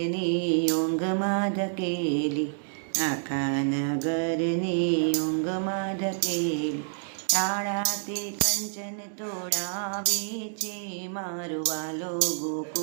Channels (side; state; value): left; silent; digital silence